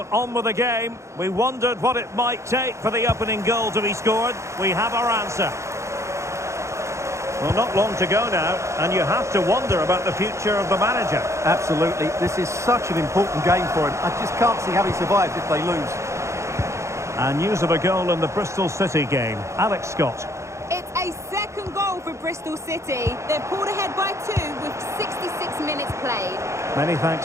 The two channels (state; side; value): late; left; 0.14 ms